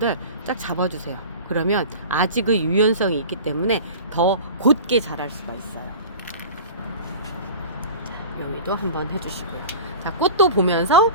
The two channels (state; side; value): inverted; both; correlation -0.36